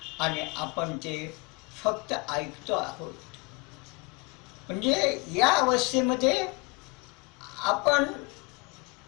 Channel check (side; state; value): right; quieter; 28.1 dB